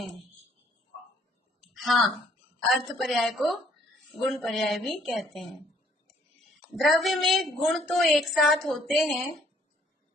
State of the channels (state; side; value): normal; both; correlation 0.63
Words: हाँ, अर्थ पर्याय को गुण पर्याय भी कहते हैं। द्रव्य में गुण तो एक साथ होते हैं,